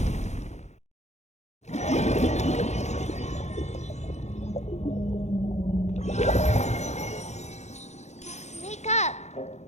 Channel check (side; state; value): right; late; 0.33 ms